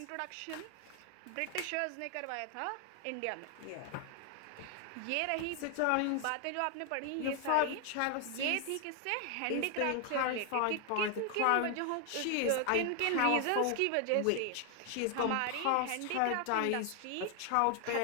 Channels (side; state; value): both; different; correlation 0.00